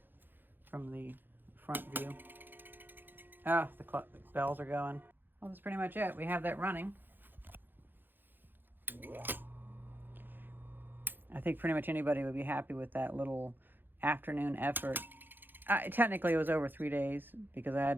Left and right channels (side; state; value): left; late; 0.094 ms